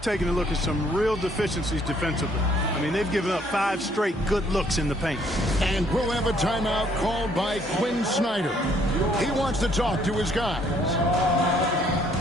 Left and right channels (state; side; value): normal; both; correlation 0.65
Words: a look at some real deficiencies defensively. I mean, they've given up 5 straight good looks in the paint. And we'll have a timeout called by Quinn Snyder. He wants to talk to his guys.